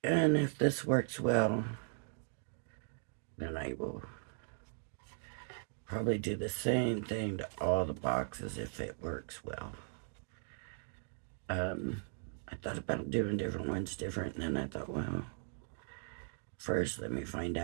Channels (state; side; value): silent; left; 52 dB below the other